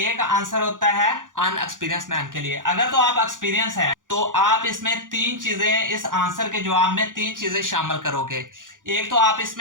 आंसर होता है अनएक्सपीरियंस मैन के लिए। अगर तो आप एक्सपीरियंस है तो आप इसमें तीन चीजें, इस आंसर के जवाब में तीन चीजें शामिल करोगे। एक तो आप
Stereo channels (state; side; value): late; left; 0.88 ms